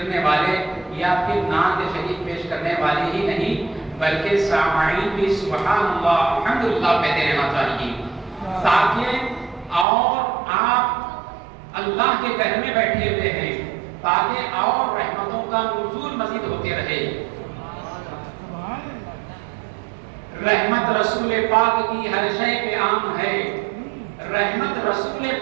والے یا پھر نعت شریف پیش کرنے والے ہی نہیں بلکہ سامعین بھی سبحان اللہ الحمدللہ کہتے رہنا چاہیے، تاکہ اور آپ اللہ کے گھر میں بیٹھے ہوئے ہیں تاکہ اور رحمتوں کا نزول مزید ہوتے رہے۔ رحمت رسول پاک کی ہر شے پہ عام ہے، رحمت رسول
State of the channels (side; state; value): left; drops out; at 9.9 s